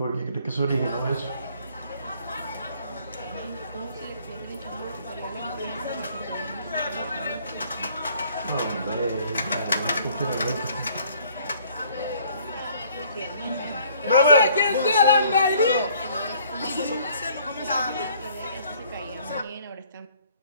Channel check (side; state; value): both; inverted; correlation -0.58